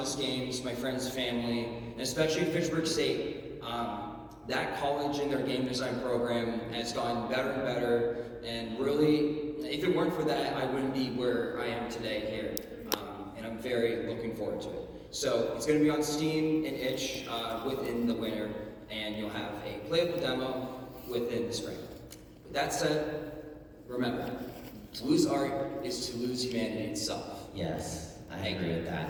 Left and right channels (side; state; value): both; identical; correlation 1.00